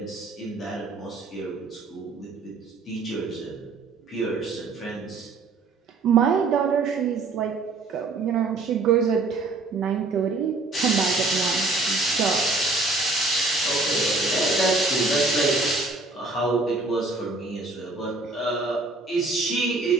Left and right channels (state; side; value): quieter; left; 3.6 dB